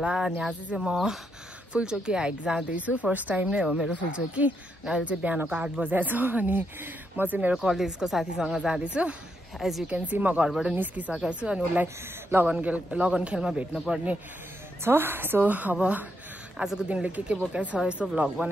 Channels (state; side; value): normal; both; correlation 0.79